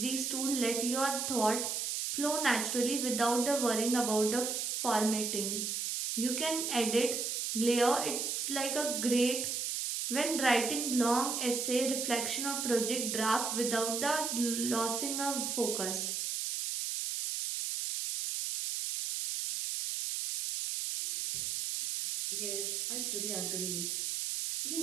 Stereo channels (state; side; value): noise; right; hiss, 1 dB below the sound